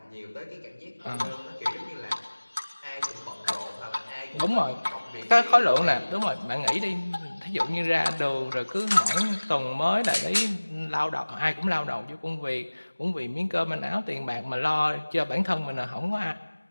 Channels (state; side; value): inverted; both; correlation -1.00